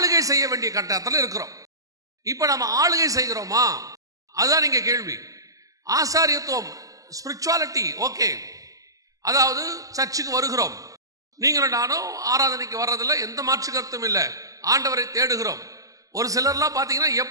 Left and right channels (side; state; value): left; late; 0.17 ms